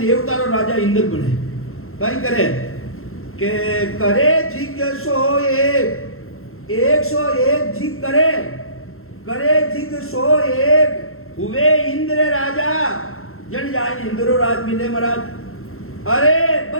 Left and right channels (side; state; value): right; late; 0.62 ms